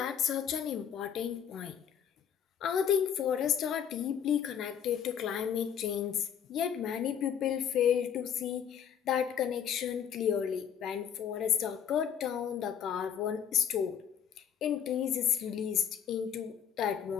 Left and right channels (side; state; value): right; quieter; 8.4 dB